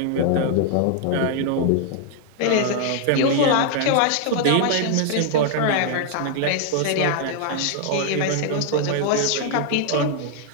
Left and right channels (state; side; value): different; both; correlation 0.00